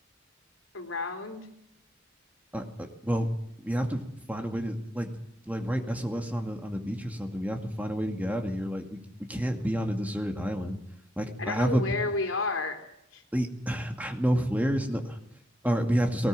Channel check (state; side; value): normal; both; correlation 0.79